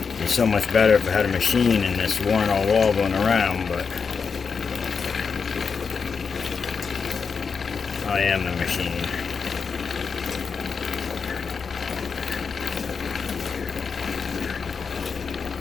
be so much better if I had a machine and this weren't all wobbling around, but I am the machine.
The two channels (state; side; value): quieter; right; 5.6 dB